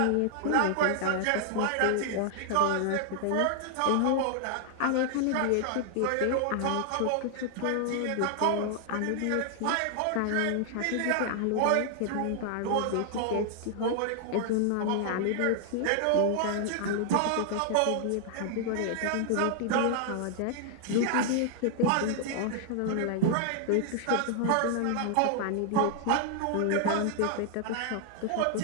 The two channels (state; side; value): different; both; correlation 0.00